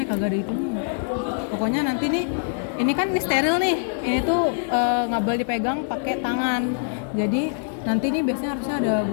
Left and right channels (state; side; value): silent; right; digital silence